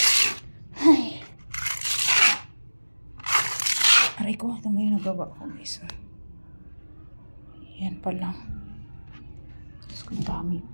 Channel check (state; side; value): inverted; both; correlation -1.00